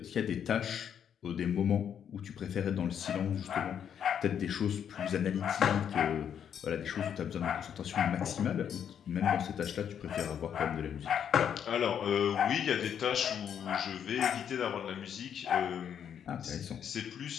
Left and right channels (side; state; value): right; quieter; 8.6 dB